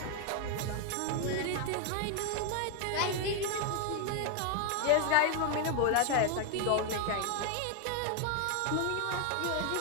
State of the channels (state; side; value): different; both; correlation 0.00